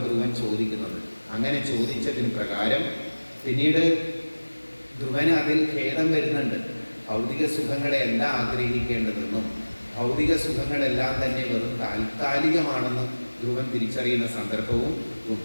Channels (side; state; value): both; inverted; correlation -1.00